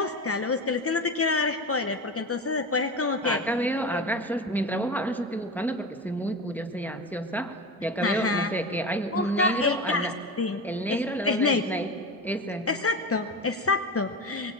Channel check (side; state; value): both; normal; correlation 0.25